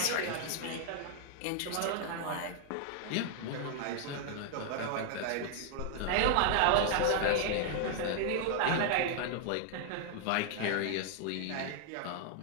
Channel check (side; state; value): both; different; correlation 0.00